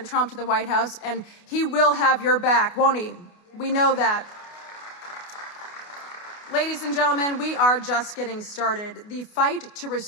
Trump to the White House, and he will have your back, won't he? We know that. Ladies and gentlemen, we are just getting started. The fight to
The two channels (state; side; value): late; right; 28 ms